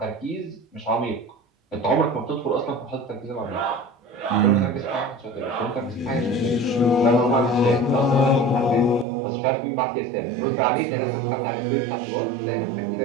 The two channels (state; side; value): drops out; left; at 9.1 s